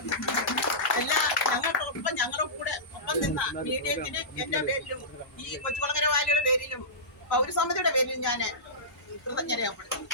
ഞങ്ങളുടെ കൂടെ ഒപ്പം നിന്ന മീഡിയത്തിന് എൻ്റെ പേരിലും ഈ കൊച്ചുകുളങ്ങര വാലിയുടെ പേരിലും പൗരസമിതിയുടെ പേരിലും ഞാൻ കൃതജ്ഞത രേഖപ്പെടുത്തുന്നു.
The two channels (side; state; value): both; normal; correlation -0.19